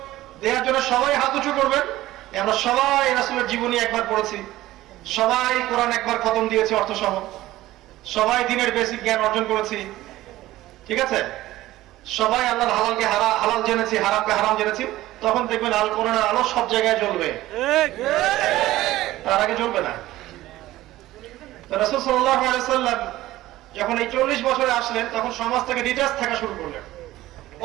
দেওয়ার জন্য সবাই হাত উঁচু করবেন, আমরা সবাই রাসূলের জীবনী একবার পড়েছি, সবাই কোরআন একবার খতম দিয়েছি অর্থ সহ, সবাই দ্বীনের বেসিক জ্ঞান অর্জন করেছি, ঠিক আছে? সবাই আল্লাহর হালালকে হালাল জেনেছি, হারামকে হারাম জেনেছি, তখন দেখবেন আল কোরআনের আলো সব জায়গায় জ্বলবে, তার আগে জ্বলবে না। রাসূল সাল্লাল্লাহু আলাইহি ওয়াসাল্লাম যখন এই 40 বছরে আসলেন, তখন সমাজ থেকে ডিটাচ থাকা শুরু করলেন।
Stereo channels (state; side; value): quieter; left; 16.1 dB